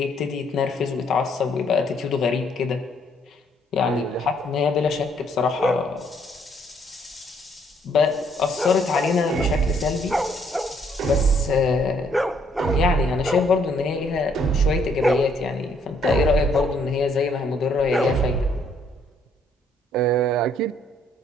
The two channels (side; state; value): both; normal; correlation 0.67